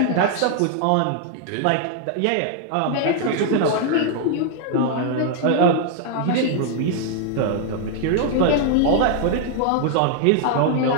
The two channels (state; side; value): different; both; correlation 0.00